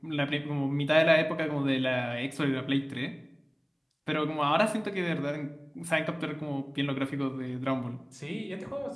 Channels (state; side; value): identical; both; correlation 1.00